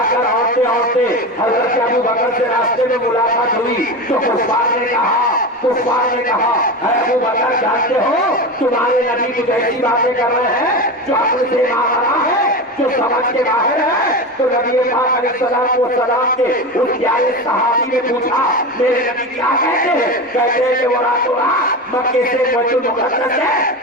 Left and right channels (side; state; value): both; normal; correlation 0.23